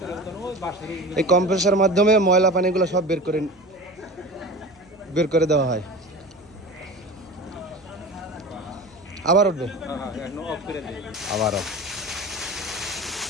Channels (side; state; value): right; noise; hum, 30 dB below the sound